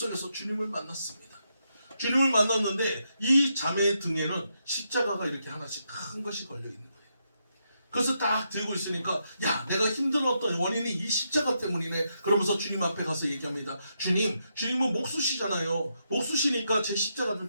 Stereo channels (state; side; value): inverted; both; correlation -0.81